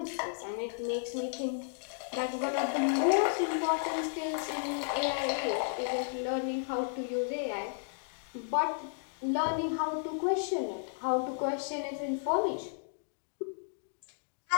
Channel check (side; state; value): right; silent; digital silence